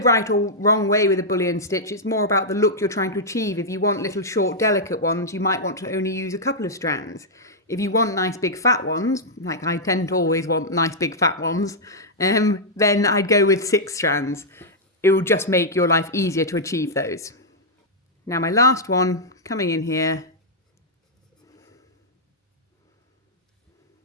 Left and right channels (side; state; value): both; normal; correlation -0.07